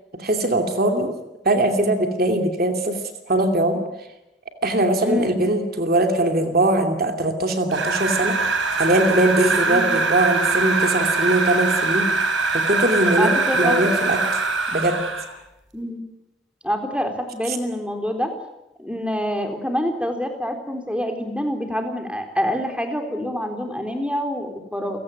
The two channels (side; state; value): both; normal; correlation 0.42